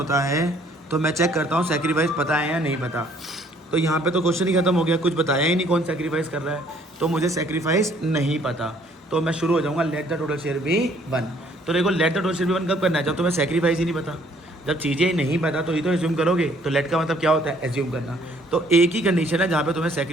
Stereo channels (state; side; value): normal; both; correlation 0.61